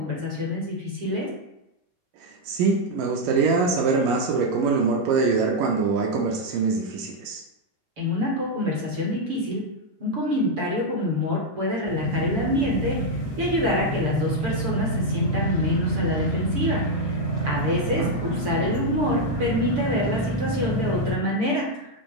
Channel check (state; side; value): late; left; 6.8 ms